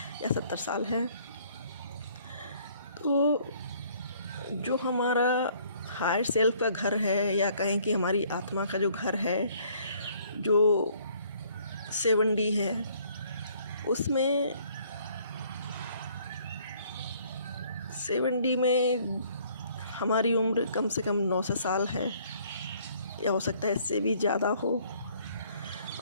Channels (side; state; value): both; inverted; correlation -0.61